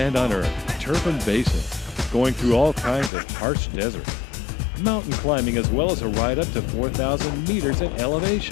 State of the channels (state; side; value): drops out; right; at 3.1 s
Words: on Earth, Turfan Basin, going through all kinds of harsh desert, mountain climbing, as well as a ride up to 4,000 meters in